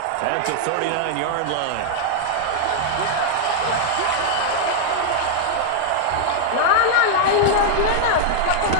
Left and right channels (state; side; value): different; both; correlation 0.00